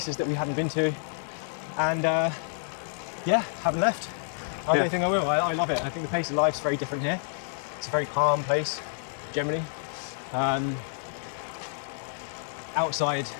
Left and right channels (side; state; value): right; silent; digital silence